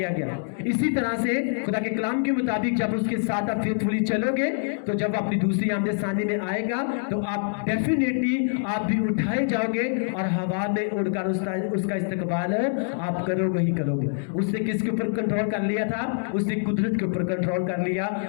गया। इसी तरह से खुदा के कलाम के मुताबिक जब उसके साथ आप फेथफुली चलोगे, तो जब अपनी दूसरी आमद सानी में आएगा तो आप डेफिनेटली आप भी उठाए जाओगे और हवा में उड़कर उसका इस्तकबाल आप करोगे ही करोगे। उसने किसके ऊपर कंट्रोल कर लिया था? उसने कुदरत के ऊपर कंट्रोल कर लिया,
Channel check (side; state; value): right; silent; 61 dB below the other